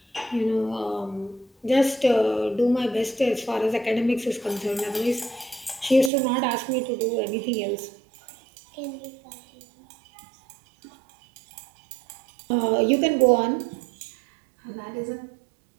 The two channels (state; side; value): drops out; left; at 6.1 s